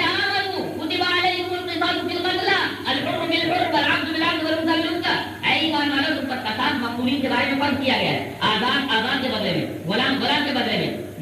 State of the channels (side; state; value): both; identical; correlation 1.00